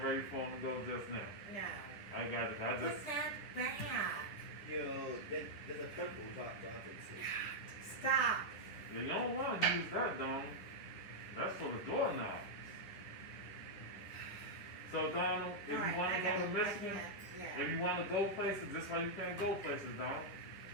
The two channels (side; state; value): right; late; 10 ms